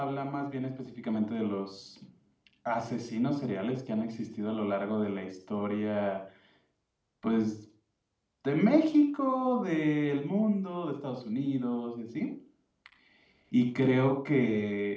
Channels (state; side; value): identical; both; correlation 1.00